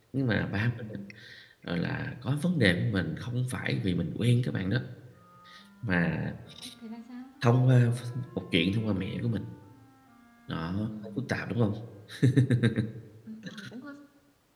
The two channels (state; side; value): identical; both; correlation 1.00